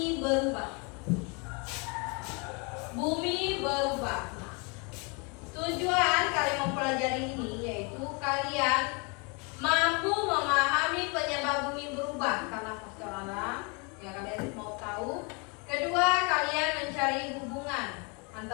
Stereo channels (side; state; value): right; quieter; 32.4 dB